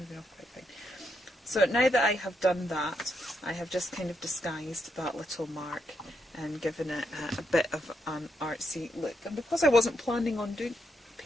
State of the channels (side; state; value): both; normal; correlation 0.80